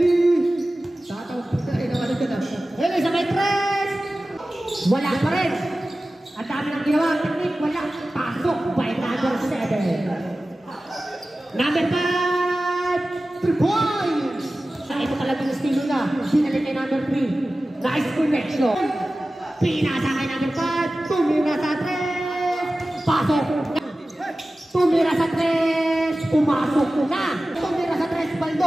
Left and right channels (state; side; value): normal; both; correlation 0.96